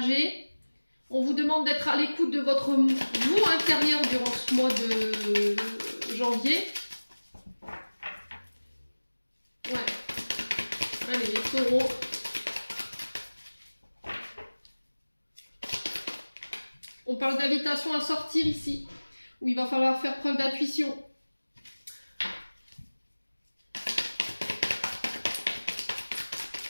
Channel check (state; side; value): inverted; both; correlation -1.00